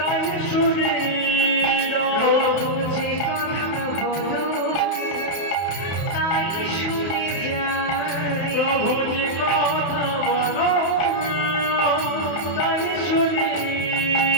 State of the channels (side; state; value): right; late; 31 ms